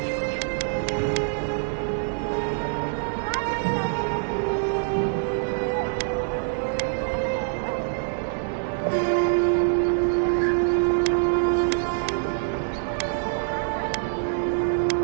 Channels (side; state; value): left; silent; 58 dB below the other